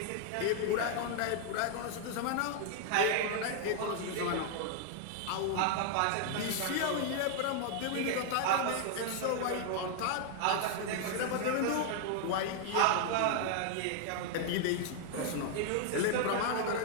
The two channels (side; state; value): both; different; correlation 0.00